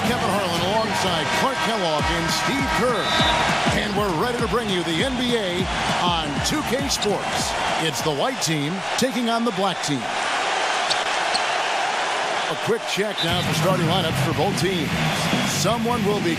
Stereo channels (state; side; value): identical; both; correlation 1.00